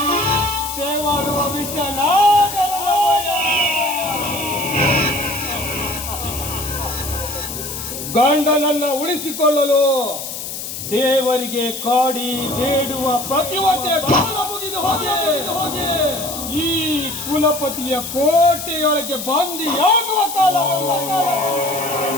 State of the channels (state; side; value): noise; left; hiss, 7 dB below the sound